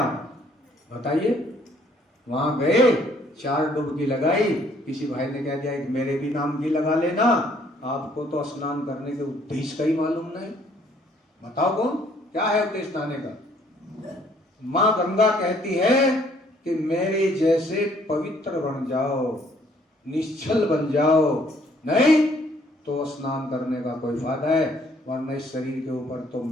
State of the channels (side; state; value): both; normal; correlation 0.63